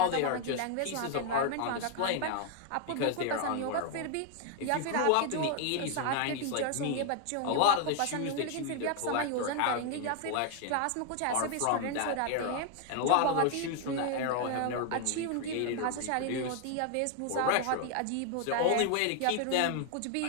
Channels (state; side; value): different; both; correlation 0.00